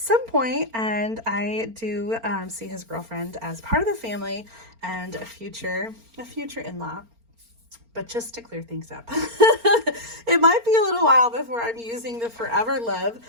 point, and I do see his girlfriend as part of the family and a future in-law. But just to clear things up, it might be a little while before I'm using the Forever Love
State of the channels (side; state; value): left; late; 4.4 ms